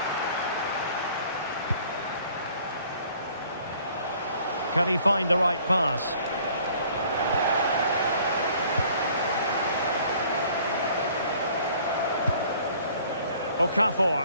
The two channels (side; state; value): both; inverted; correlation -0.56